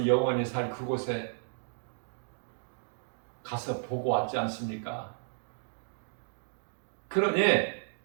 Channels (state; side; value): silent; left; digital silence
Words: 영원히 살 그곳에 가서 보고 왔지 않습니까? 그러니